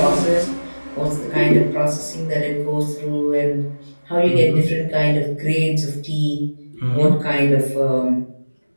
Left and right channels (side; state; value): both; inverted; correlation -1.00